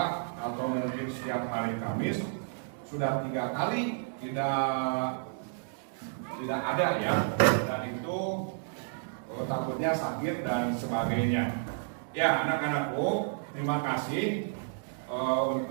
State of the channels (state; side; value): silent; left; digital silence